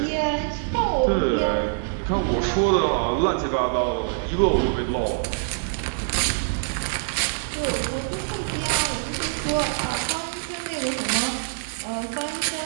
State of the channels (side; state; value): left; silent; digital silence